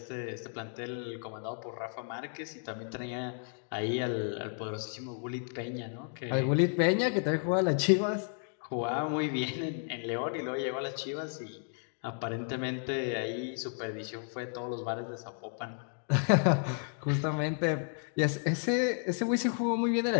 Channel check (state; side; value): silent; right; 56 dB below the other